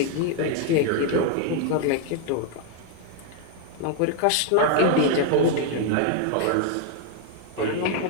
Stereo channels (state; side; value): different; both; correlation 0.00